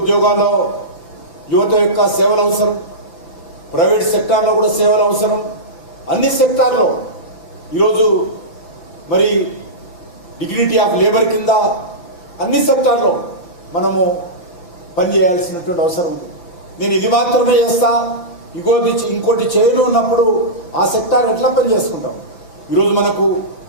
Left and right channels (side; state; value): right; late; 5.8 ms